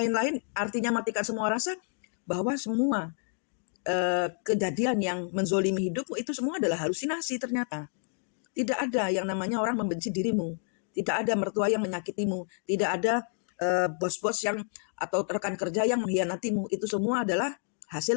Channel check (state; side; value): silent; right; 58 dB below the other